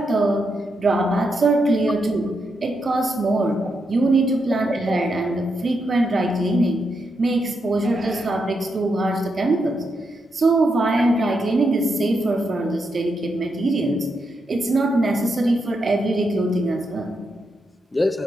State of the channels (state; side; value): normal; both; correlation 0.83